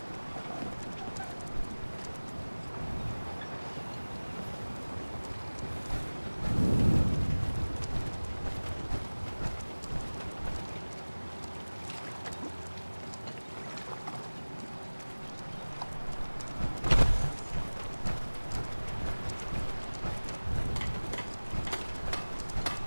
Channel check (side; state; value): both; inverted; correlation -1.00